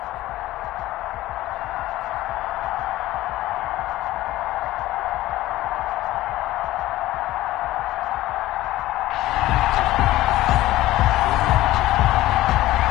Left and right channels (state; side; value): quieter; right; 16.2 dB